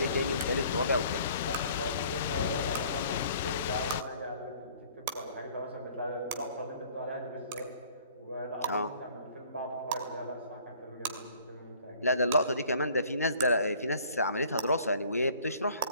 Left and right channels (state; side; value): inverted; both; correlation -0.55